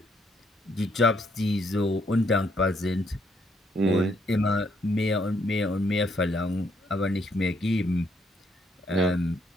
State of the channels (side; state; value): both; normal; correlation 0.72